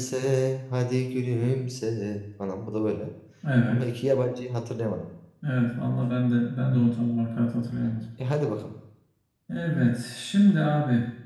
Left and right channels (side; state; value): both; identical; correlation 1.00